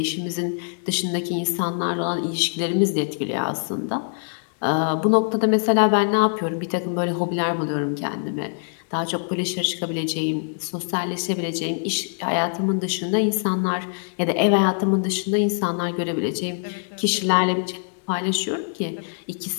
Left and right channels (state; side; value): silent; right; 63 dB below the other